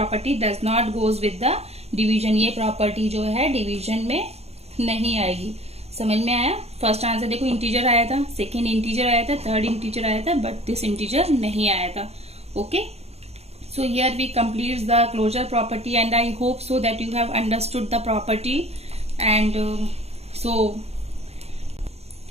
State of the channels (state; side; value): late; left; 0.30 ms